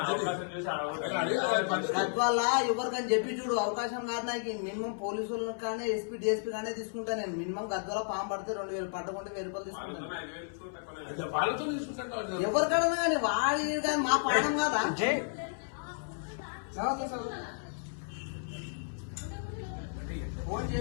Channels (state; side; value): silent; right; 56 dB below the other